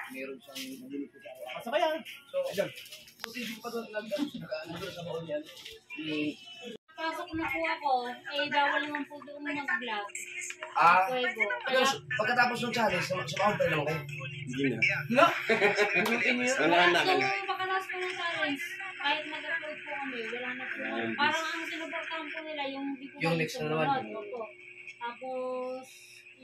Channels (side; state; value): both; identical; correlation 1.00